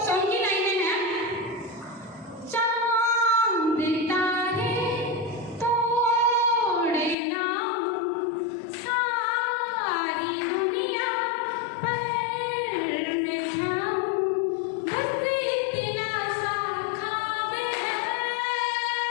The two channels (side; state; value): right; drops out; at 7.2 s